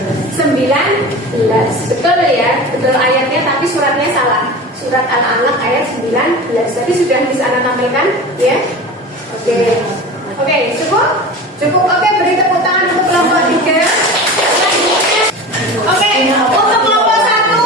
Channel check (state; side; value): normal; both; correlation 0.33